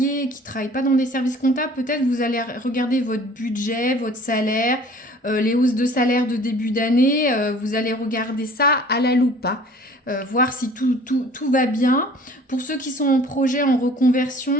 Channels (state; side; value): normal; both; correlation 0.50